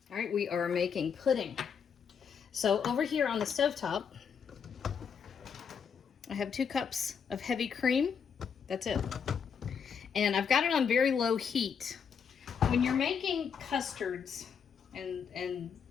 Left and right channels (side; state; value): right; quieter; 6.8 dB